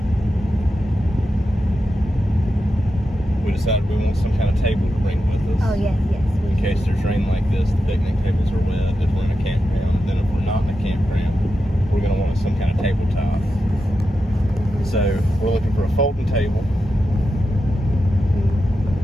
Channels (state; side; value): normal; both; correlation 0.89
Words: We decided we want some kind of table to bring with us. Oh, yes. In case there's rain like this, the picnic tables are wet if we're in a campground. Then if we're not in a campground, we're going to want some kind of tabletop. So we're looking for a folding table.